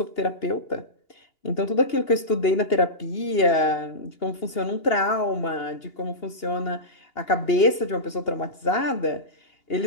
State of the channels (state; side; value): late; right; 2.8 ms